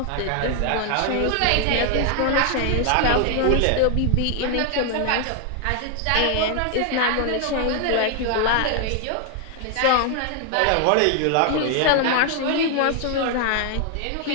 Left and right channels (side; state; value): both; different; correlation 0.00